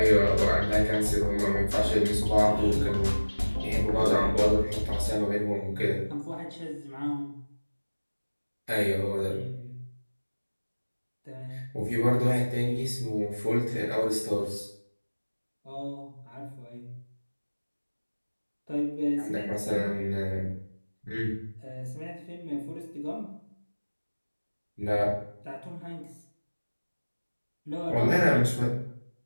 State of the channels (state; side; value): inverted; both; correlation -1.00